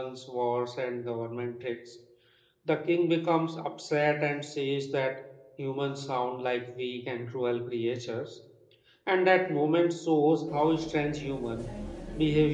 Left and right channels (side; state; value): both; identical; correlation 1.00